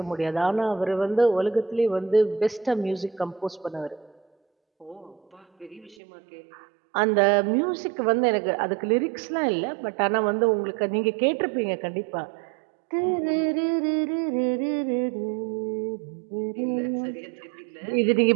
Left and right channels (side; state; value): left; drops out; at 6.0 s